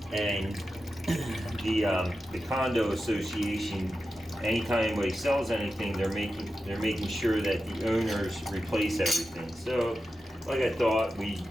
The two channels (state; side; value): normal; both; correlation 0.91